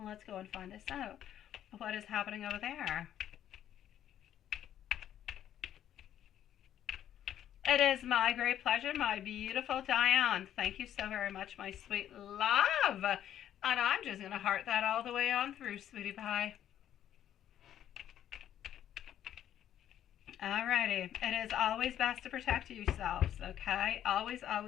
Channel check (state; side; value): quieter; right; 10.9 dB